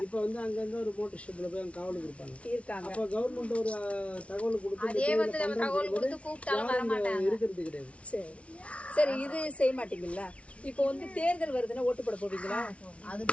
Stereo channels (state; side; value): late; right; 0.062 ms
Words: இப்ப வந்து அங்க ஒரு மோட்டர் ஷெட்ல போய் காவலுக்கு இருப்பாங்க. அப்ப கவர்மெண்ட் ஒரு தகவல் கொடுத்து அதே வந்து நம்ம தகவல் கொடுத்து கூப்பிட்டாலும் வர மாட்டாங்க. இருக்கிறது கிடையாது. சரி, இது செய்ய மாட்டீங்களா? இப்போ வந்து தேர்தல் வருதுன்னா ஓட்டு போட போவீங்களா? அது